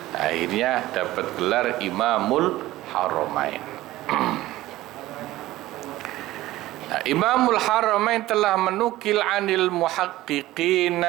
Akhirnya dapat gelar Imamul Haramain. Nah, Imamul Haramain telah menukil anil muhaqqiqin,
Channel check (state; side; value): quieter; left; 16.5 dB